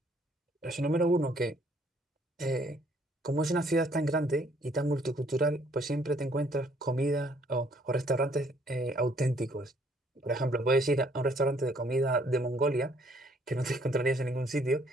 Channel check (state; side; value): normal; both; correlation 0.64